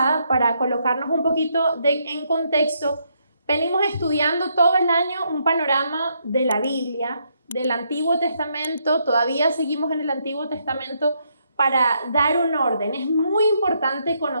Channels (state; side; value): inverted; both; correlation -0.76